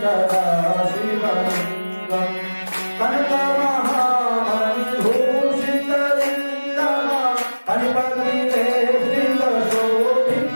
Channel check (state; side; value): inverted; both; correlation -1.00